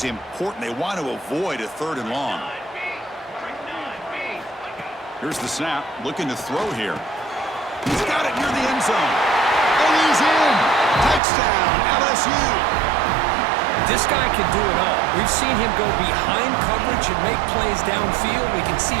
important. They want to avoid a third and long. Here's the snap. Looking to throw here. He's got it near the end zone. And he's in. Touchdown, LSU. This guy can do it all. We've seen him go behind coverage and make plays downfield. We can see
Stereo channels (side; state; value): left; drops out; at 11.2 s